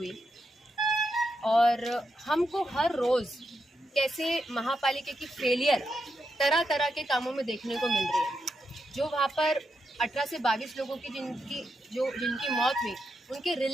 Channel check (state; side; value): normal; both; correlation 0.84